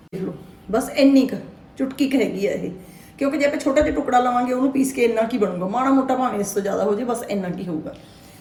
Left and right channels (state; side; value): identical; both; correlation 1.00